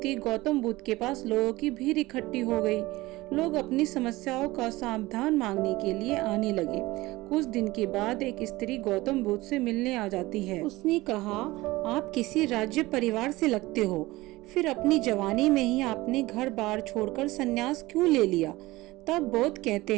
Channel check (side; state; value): left; quieter; 19.6 dB